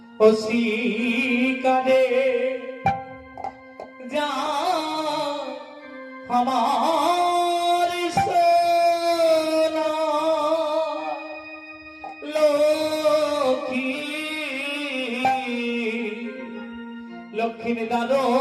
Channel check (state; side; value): identical; both; correlation 1.00